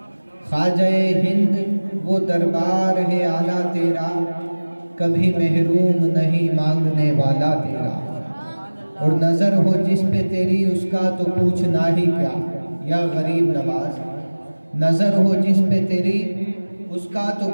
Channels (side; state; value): both; inverted; correlation -1.00